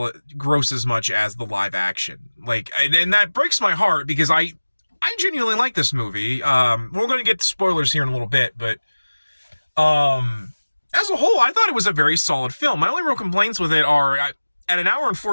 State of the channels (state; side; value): inverted; both; correlation -1.00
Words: gross as much as the live action. Like, and that breaks my heart because I genuinely like this movie. We're going to get to spoilers here in a little bit, but as a whole, I thought it was a very solid film. My only real complaints with it are, at an hour and